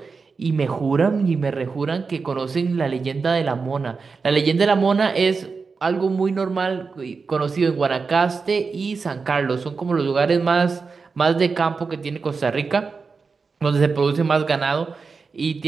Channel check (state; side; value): quieter; left; 4.8 dB